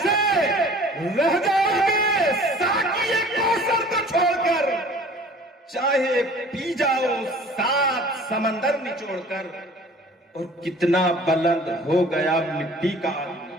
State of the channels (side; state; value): both; normal; correlation 0.48